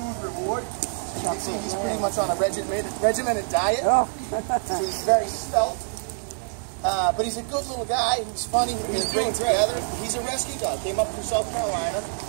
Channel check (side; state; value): left; silent; digital silence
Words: reward. You can see he's pretty much on a regimented diet. So he's very svelte. But he's a good little guy. He's funny. He's great together. He's a rescue dog. Came up from South Carolina.